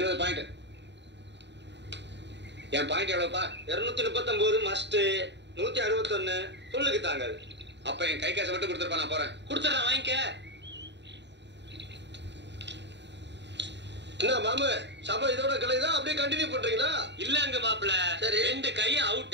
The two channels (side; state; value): left; late; 0.51 ms